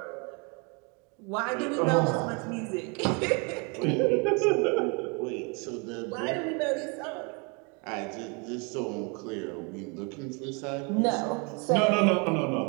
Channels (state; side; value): quieter; left; 32.8 dB